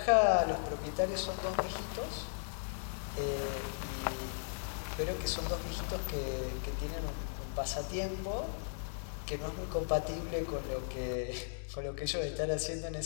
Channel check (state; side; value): silent; right; digital silence